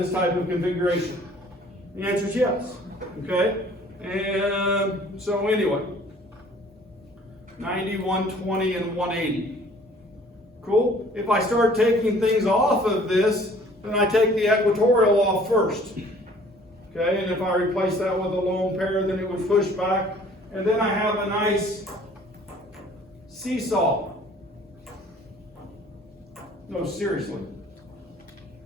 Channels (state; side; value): normal; both; correlation 0.54